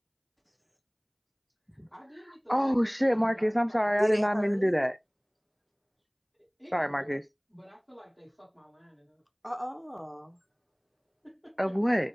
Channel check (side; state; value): both; identical; correlation 1.00